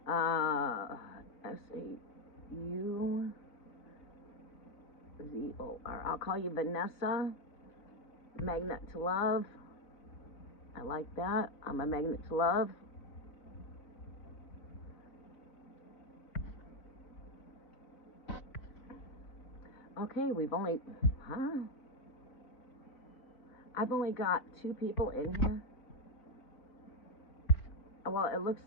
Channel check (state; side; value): late; right; 4.0 ms